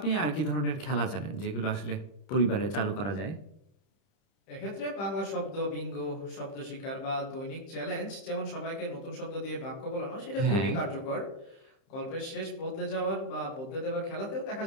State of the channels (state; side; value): late; right; 30 ms